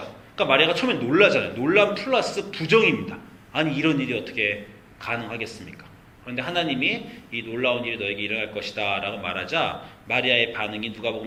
그러니까 마리아가 처음에 놀라잖아요. 놀람 플러스 부정입니다. 아니 이런 일이 어떻게 가능하겠습니까? 그런데 하나님이 이 놀라운 일이 너에게 일어날 것이다 라고 말하자 마리아의 반응이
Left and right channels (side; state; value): both; identical; correlation 1.00